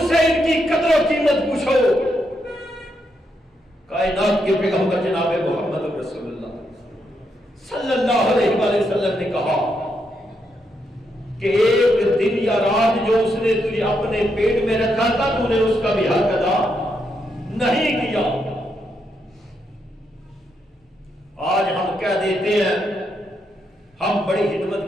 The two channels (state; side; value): normal; both; correlation 0.80